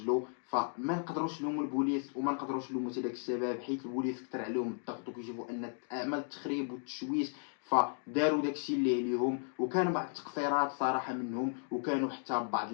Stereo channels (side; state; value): right; silent; 54 dB below the other